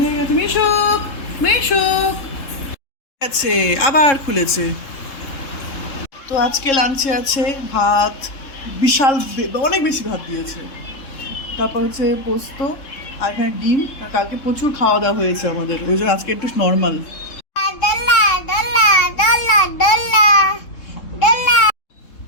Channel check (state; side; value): late; right; 3.7 ms